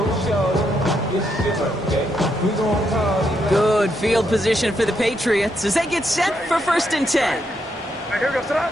Good field position for the Patriots as they get set for 1st and 10.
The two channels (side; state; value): both; normal; correlation 0.78